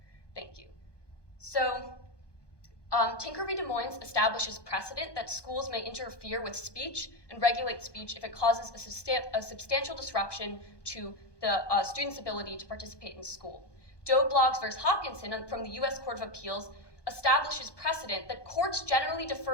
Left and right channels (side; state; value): right; late; 1.2 ms